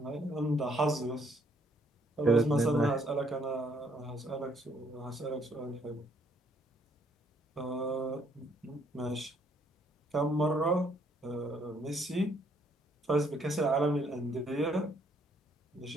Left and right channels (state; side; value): normal; both; correlation 0.68